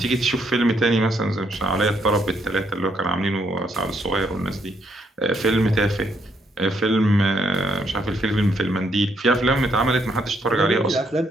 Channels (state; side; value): normal; both; correlation 0.73